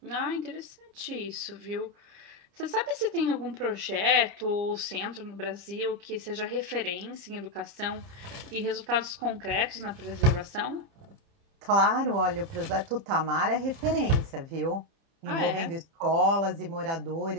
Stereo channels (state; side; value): late; left; 30 ms